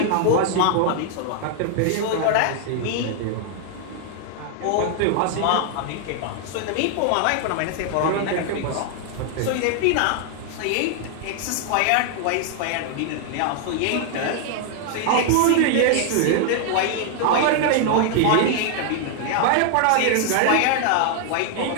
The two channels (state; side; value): different; both; correlation 0.00